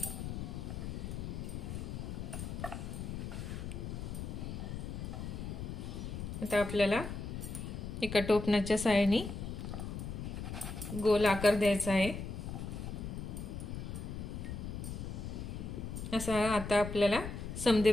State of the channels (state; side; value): noise; left; rumble, 6 dB below the sound